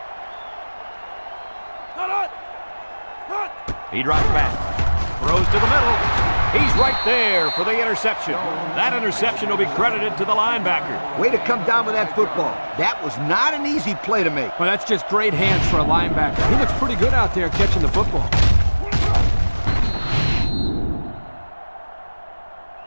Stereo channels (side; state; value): both; inverted; correlation -1.00